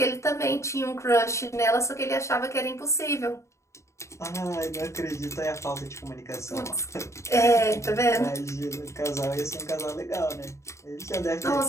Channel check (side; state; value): right; late; 0.14 ms